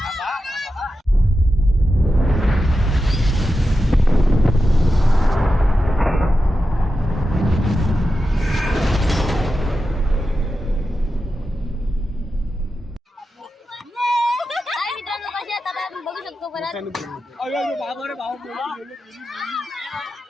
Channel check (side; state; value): both; normal; correlation 0.91